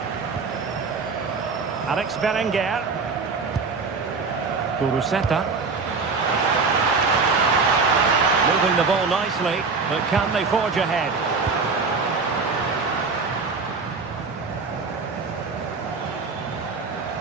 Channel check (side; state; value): left; quieter; 4.5 dB